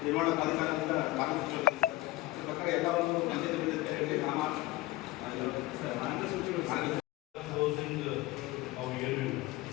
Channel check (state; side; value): quieter; right; 18.7 dB